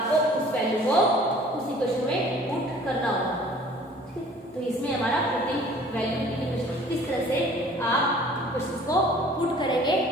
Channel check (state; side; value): normal; both; correlation 0.51